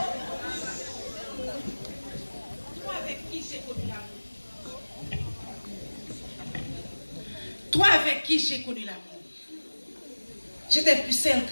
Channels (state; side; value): inverted; both; correlation -1.00